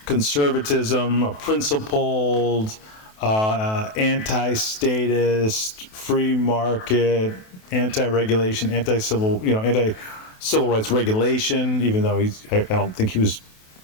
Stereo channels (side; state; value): right; late; 28 ms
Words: conservatism, a principled, anti-statist, free market, anti-regulation, anti-civil rights regulation. Even though I don't think he was